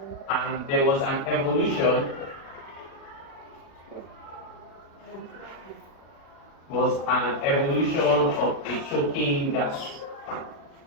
And there was an evolution. Of a choking gas.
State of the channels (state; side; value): late; right; 36 ms